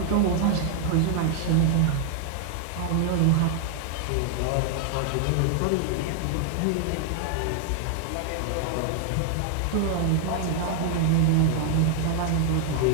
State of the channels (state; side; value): different; both; correlation 0.00